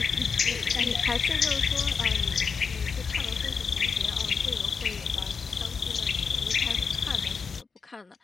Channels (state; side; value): quieter; right; 5.6 dB